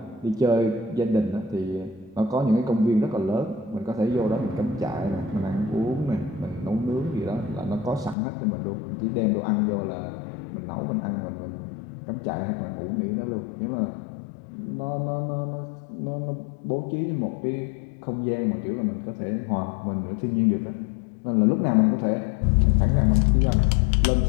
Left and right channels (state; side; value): drops out; right; at 8.2 s